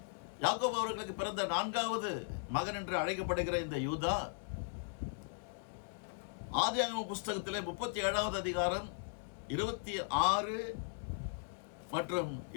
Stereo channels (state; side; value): silent; right; digital silence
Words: யாக்கோபு அவர்களுக்கு பிறந்த 4வது மகன் என்று அழைக்கப்படுகிற இந்த யூதா, ஆதியாகம புஸ்தகத்திலே 37வது அதிகாரம் 26 மற்றும்